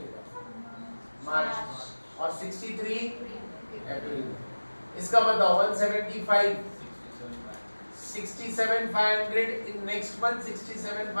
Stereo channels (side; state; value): both; inverted; correlation -1.00